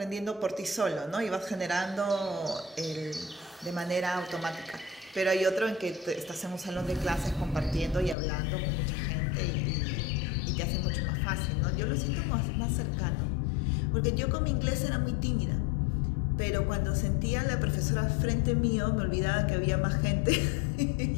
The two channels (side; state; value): right; drops out; at 8.2 s